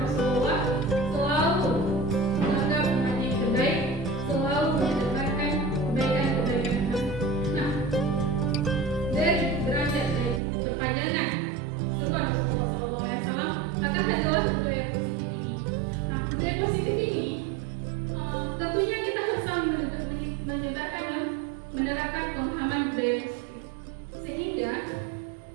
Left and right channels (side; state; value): left; drops out; at 10.4 s